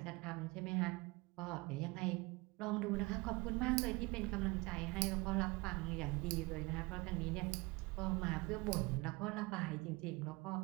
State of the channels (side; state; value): left; quieter; 24.6 dB